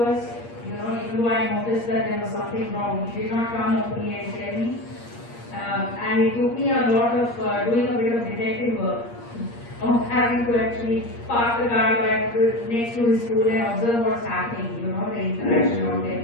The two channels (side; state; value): right; late; 8.5 ms